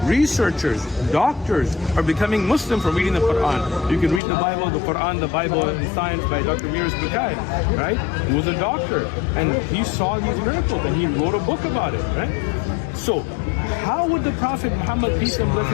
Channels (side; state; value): right; drops out; at 4.2 s